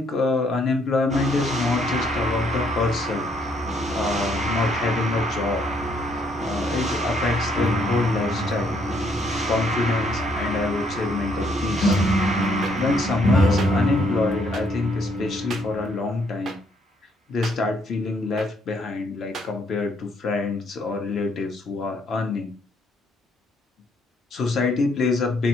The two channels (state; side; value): normal; both; correlation 0.69